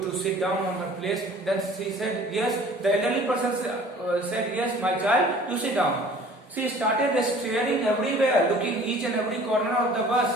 sit down on her place. Then she said, yes. The elderly person said, yes, my child, you sit down. She started staring everywhere, looking each and every corner of the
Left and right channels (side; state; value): both; normal; correlation 0.49